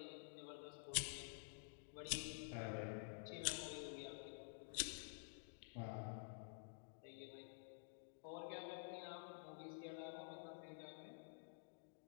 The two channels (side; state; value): right; silent; digital silence